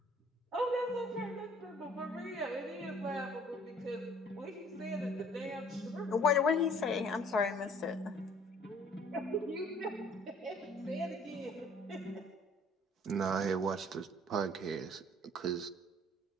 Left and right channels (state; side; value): normal; both; correlation 0.55